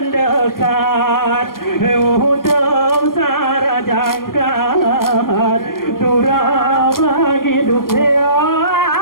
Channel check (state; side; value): late; right; 0.92 ms